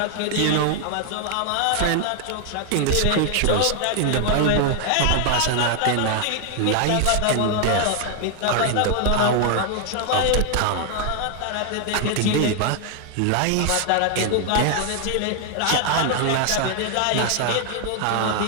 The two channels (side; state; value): both; different; correlation 0.00